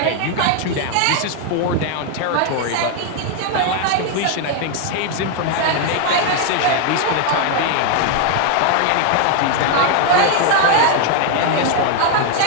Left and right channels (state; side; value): different; both; correlation 0.00